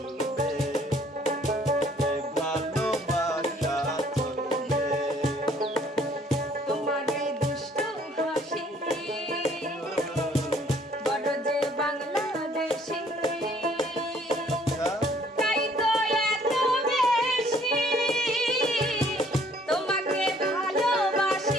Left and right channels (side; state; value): both; normal; correlation 0.60